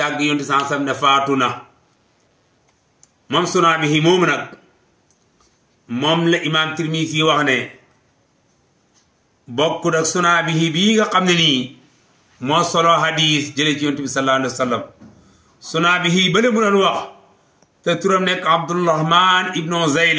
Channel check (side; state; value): both; identical; correlation 1.00